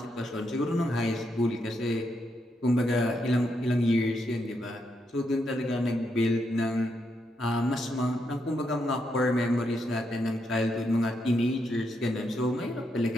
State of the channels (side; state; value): both; normal; correlation 0.80